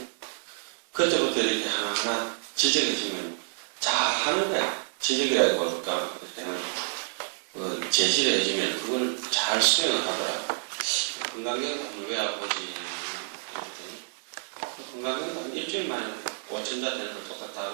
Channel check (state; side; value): silent; left; 59 dB below the other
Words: 그때부터 이렇게 하나하나 지적해주면 잘하는 거야. 지적이라고 볼까. 제시를 해주면 그걸 잘 수행을 하더라. 건강경도 왜 아버지 이랬더니 건강경도 한 일주일 만에 5천자 되는 걸 똑같다